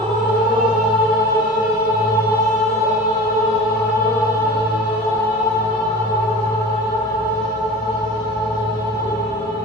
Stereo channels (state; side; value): normal; both; correlation 0.36